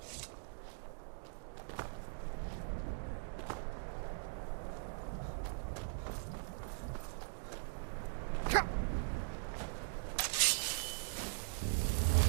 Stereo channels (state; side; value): silent; left; digital silence